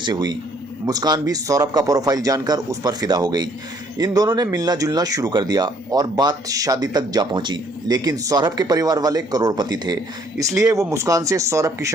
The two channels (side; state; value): both; normal; correlation 0.63